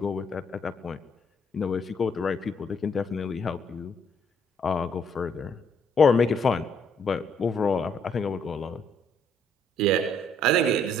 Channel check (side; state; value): both; normal; correlation 0.68